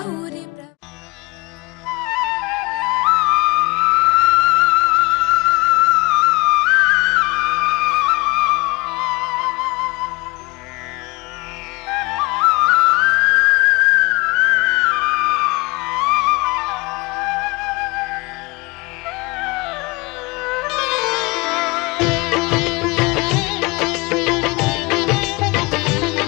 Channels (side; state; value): right; quieter; 25.4 dB